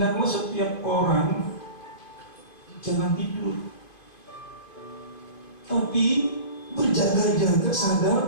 setiap orang jangan tidur, tapi berjaga-jaga,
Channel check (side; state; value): right; late; 2.5 ms